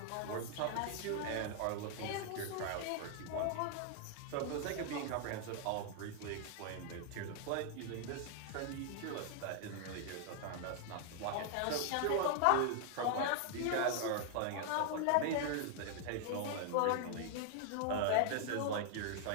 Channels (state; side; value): different; both; correlation 0.00